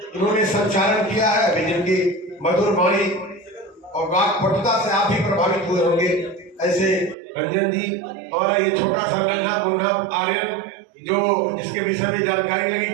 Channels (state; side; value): drops out; left; at 7.2 s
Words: उन्होंने संचालन किया है। अभी जिनकी मधुर वाणी और वाक्पटुता से आप भी प्रभावित हुए होंगे, ऐसे रंजन जी और ये छोटा सा नन्हा मुन्हा आर्यन जो जिसके विषय में जानकारी लगी